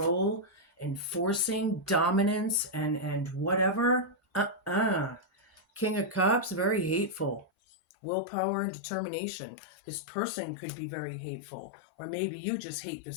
and forcing dominance and whatever. King of Cups, very hateful. Willpower and determination. This person could be very hateful, or maybe you just hate the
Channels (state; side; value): drops out; right; at 7.5 s